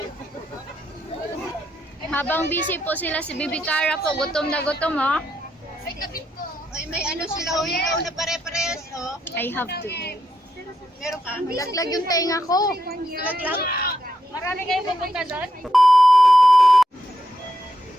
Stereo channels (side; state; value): both; normal; correlation 0.81